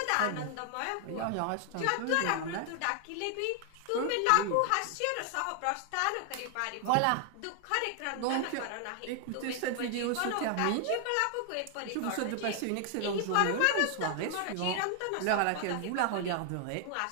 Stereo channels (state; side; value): different; both; correlation 0.00